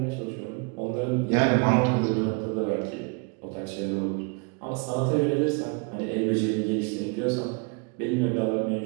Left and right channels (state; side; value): quieter; left; 32.4 dB